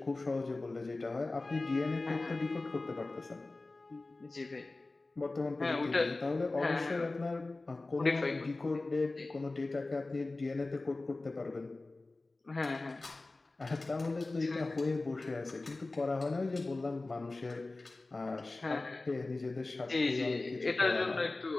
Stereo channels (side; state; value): right; quieter; 3.2 dB